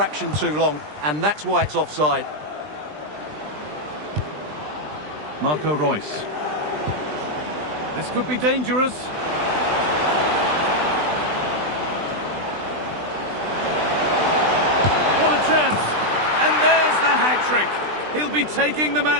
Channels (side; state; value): left; late; 20 ms